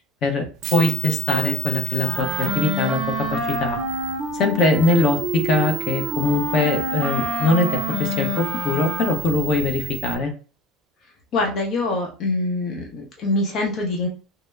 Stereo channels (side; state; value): both; normal; correlation 0.40